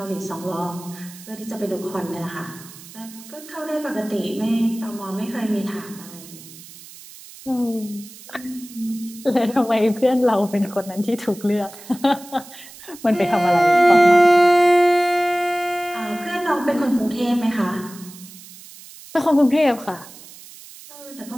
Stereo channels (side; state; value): right; noise; hiss, 18 dB below the sound